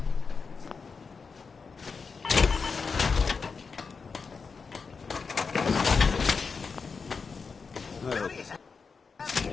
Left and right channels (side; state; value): right; quieter; 5.1 dB